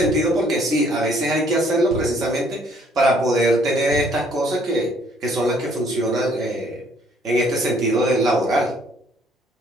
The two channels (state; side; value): normal; both; correlation 0.63